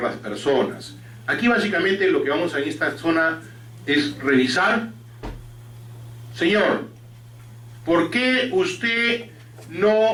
las personas. Aquí básicamente lo que vamos a en esta zona es revisar. Señor, ¿por qué usted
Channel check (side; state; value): both; identical; correlation 1.00